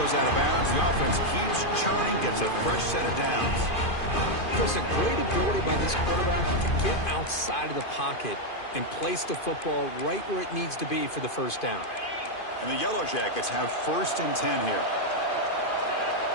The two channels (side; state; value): right; late; 2.5 ms